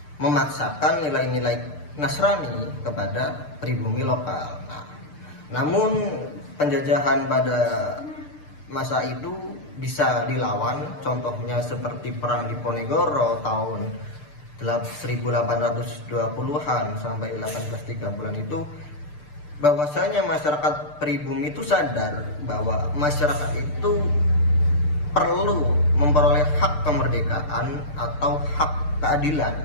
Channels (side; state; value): right; late; 6.8 ms